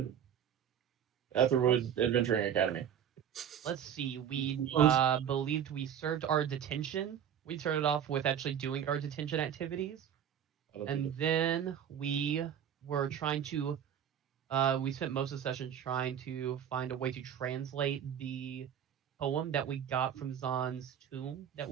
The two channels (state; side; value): quieter; left; 9.1 dB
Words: Aetherwood Adventuring Academy? Let's see. We believed we served our detention. We started off with actually doing our detention activities, and then we were trying to. We spent most of the session trying to find a way to translate the poem that we got from Zahn's tomb that